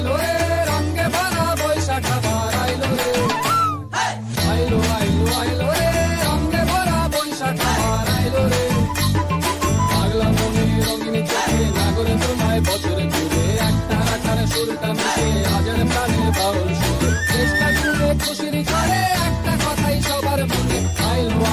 আইলো রে রঙে ভরা বৈশাখ আবার আইলো রে আইলো আইলো আইলো রে রঙে ভরা বৈশাখ আবার আইলো রে পাগলা মনে রঙিন চোখে নাগরে তোমায় বছরে ঘুরে একটা আকারে সুরটা মিশে আজের প্রাণে বাউল সুরে চেষ্টা করে খুশির করে একটা কথাই সবার মনে আইলো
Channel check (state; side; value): identical; both; correlation 1.00